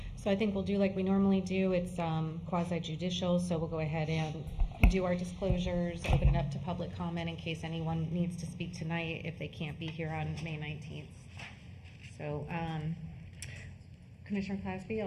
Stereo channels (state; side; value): identical; both; correlation 1.00